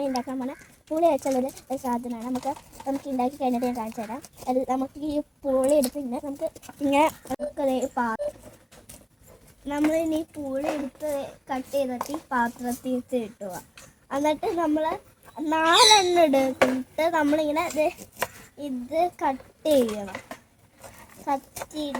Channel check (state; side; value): identical; both; correlation 1.00